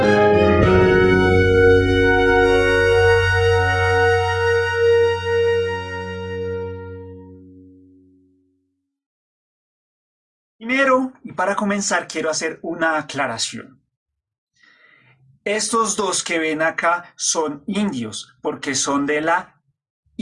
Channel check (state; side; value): identical; both; correlation 1.00